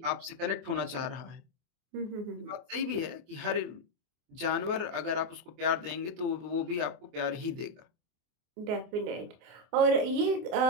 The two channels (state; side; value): late; left; 24 ms